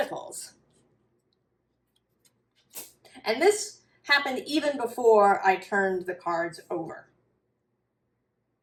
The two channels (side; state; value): both; identical; correlation 1.00